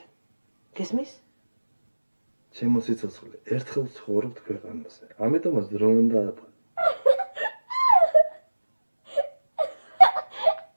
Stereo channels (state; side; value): inverted; both; correlation -1.00